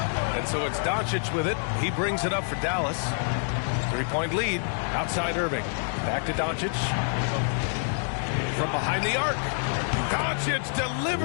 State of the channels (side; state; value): right; silent; digital silence